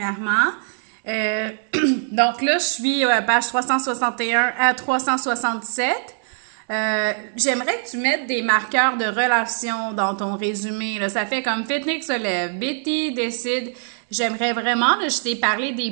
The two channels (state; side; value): silent; left; 64 dB below the other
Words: Euh, donc là, je suis page 361 à 367. J'aimerais que tu mettes des marqueurs de relation dans ton résumé. Là. Ça fait comme Fitnick se lève, Betty décide. J'aimerais vraiment, là, je t'ai parlé des